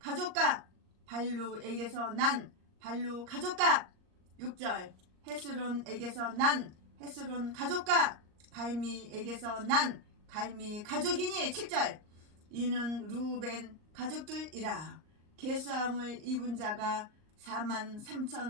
발루에게서 난 발루 가족과 6절 헤스론에게서 난 헤스론 가족과 갈미에게서 난 갈미 가족이니. 7절 이는 루벤 가족들이라. 계수함을 입은 자가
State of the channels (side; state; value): left; late; 38 ms